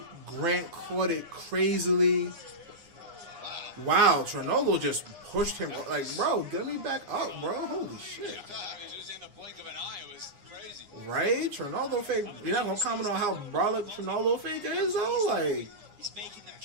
Grant caught it crazily. Wow, Trinaldo just pushed him. Like, bro, get me back up, bro. Holy shit. I mean, just in the blink of an eye, it was crazy. Right? Trinaldo fake. You're not going to comment on how brolic Trinaldo fake is, though? Like, he's making them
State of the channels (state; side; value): late; left; 9.7 ms